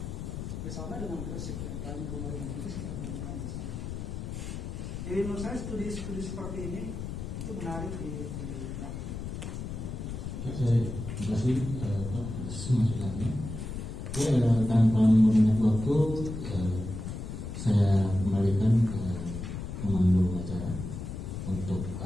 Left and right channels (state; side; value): noise; left; rumble, 6 dB below the sound